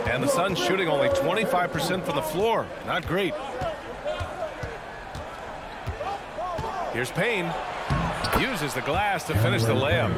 And the Suns shooting only 25% from the floor. Not great. Here's Payne. Uses the glass to finish the layup.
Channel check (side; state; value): both; identical; correlation 1.00